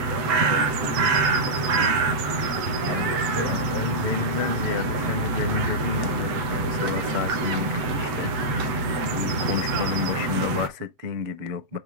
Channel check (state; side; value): late; left; 7.8 ms